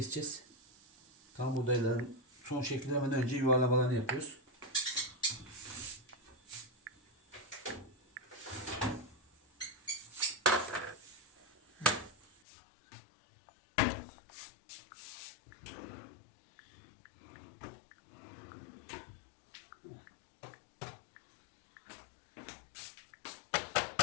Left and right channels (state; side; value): drops out; right; at 12.4 s